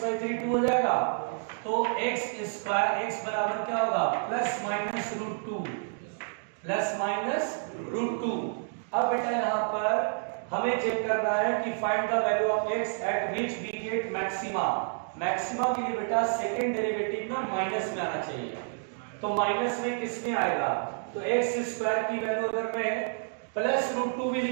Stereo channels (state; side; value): silent; left; digital silence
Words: by 3 2 हो जाएगा, तो x स्क्वायर x बराबर क्या होगा plus minus root 2, plus minus root 2। अब बेटा यहाँ पर हमें चेक करना है कि find the value of x at which we get maxima. Maxima के लिए बेटा सेकंड डेरिवेटिव ना माइनस में आना चाहिए, तो माइनस में किस में आएगा, तो x स्क्वायर की वैल्यू अगर मैं प्लस रूट 2 भी